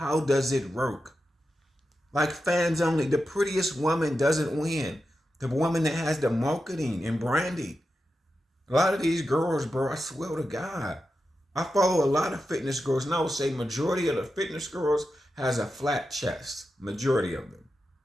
does it work? Like fans only, the prettiest woman doesn't win. The woman that has the marketing and branding. A lot of these girls, bro, I swear to God, I follow a lot of fitness girls, and I would say majority of the fitness girls has a flat chest. Majority of them.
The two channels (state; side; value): normal; both; correlation 0.90